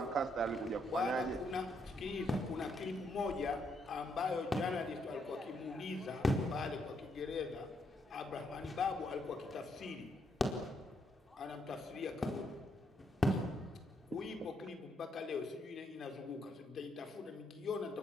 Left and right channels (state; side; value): normal; both; correlation 0.75